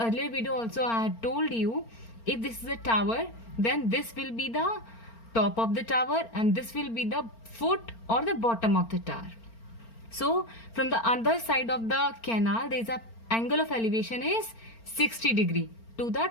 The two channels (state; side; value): late; right; 4.4 ms